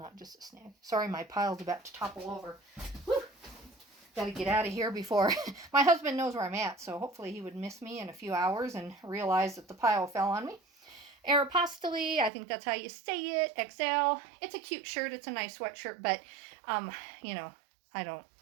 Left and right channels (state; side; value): drops out; left; at 12.3 s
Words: just a snag. Sorry, my pile's about to topple over. Whew. Got to get out of here before my husband knows where I'm at, so hopefully he would miss me in a few hours and realize that the pile fell on me. Aeropostale, I think that's how you say it. XL. It's a cute shirt. It's a nice sweatshirt, but, I don't